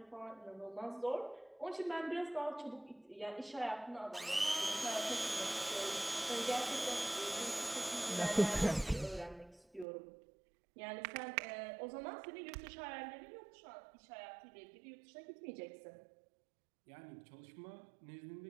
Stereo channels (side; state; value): left; drops out; at 9.9 s